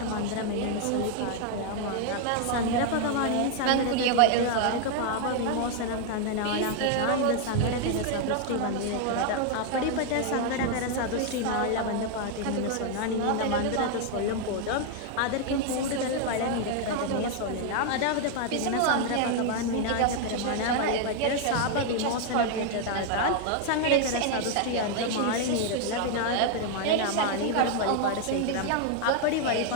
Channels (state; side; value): different; both; correlation 0.00